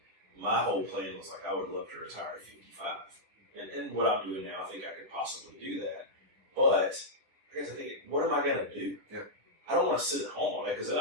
my whole plan was I would love to retire at 55. And what I'm doing now, I think I could possibly do that. But I guess I think, what am I gonna do? Yeah. I don't want to sit at home all day because then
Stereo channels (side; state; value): left; late; 10 ms